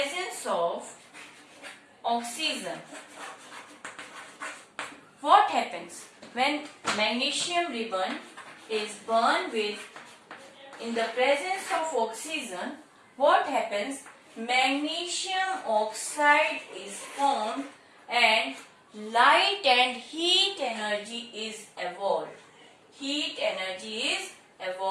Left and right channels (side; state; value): both; identical; correlation 1.00